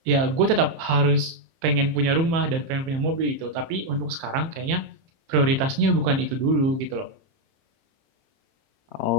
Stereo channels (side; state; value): left; late; 30 ms